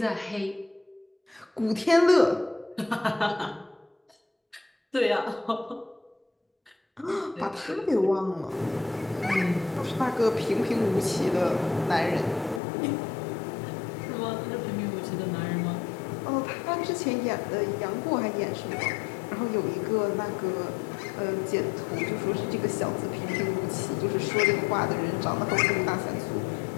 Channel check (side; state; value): right; drops out; at 12.6 s